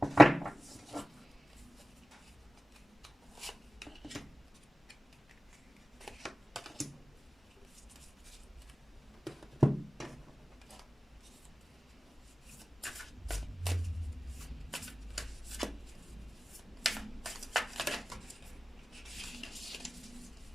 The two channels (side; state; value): both; normal; correlation 0.96